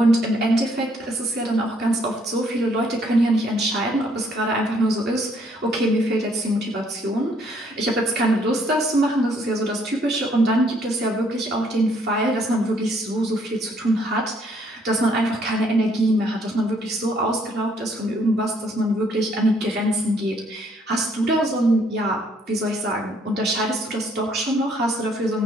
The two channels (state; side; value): normal; both; correlation 0.66